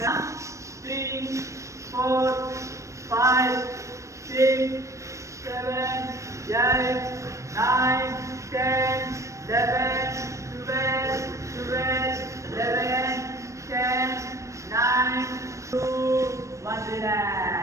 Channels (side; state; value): left; late; 0.15 ms